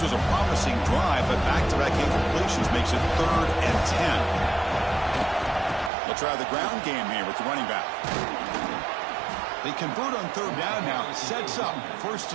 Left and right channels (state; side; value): drops out; left; at 5.9 s